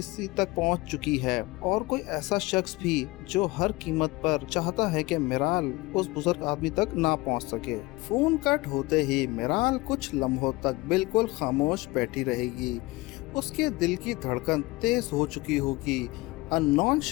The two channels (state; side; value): quieter; right; 21.9 dB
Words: तक पहुंच चुकी है और कोई ऐसा शख्स भी जो हर कीमत पर चाहता है कि मिराल उस बुजुर्ग आदमी तक ना पहुंच सके। फ़ोन कट होते ही मिराल कुछ लम्हों तक बिल्कुल खामोश बैठी रहेगी। उसके दिल की धड़कन तेज हो चुकी होगी। अननोन